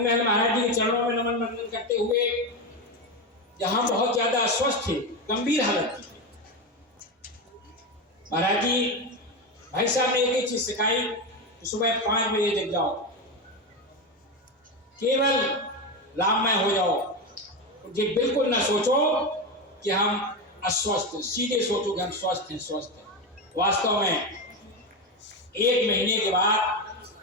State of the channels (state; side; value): normal; both; correlation 0.15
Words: महाराज जी के चरणों में नमन वंदन करते हुए, जहां बहुत ज्यादा अस्वस्थ थे, गंभीर हालत थी, महाराज जी भाई साहब ने एक ही चीज सिखाई कि सुबह 5 बजे जग जाओ, केवल राममय हो जाओ, जी बिल्कुल ना सोचो कि हम अस्वस्थ, सीधे सोचो कि हम स्वस्थ हैं। वास्तव में 1 महीने के बाद